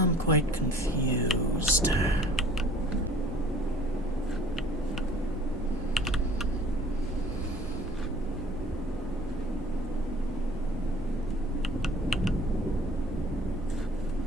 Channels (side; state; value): both; normal; correlation 0.52